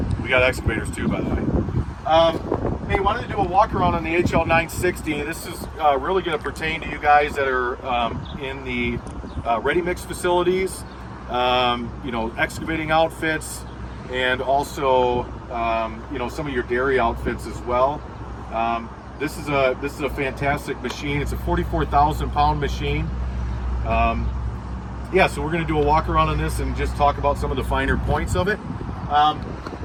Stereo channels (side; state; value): both; identical; correlation 1.00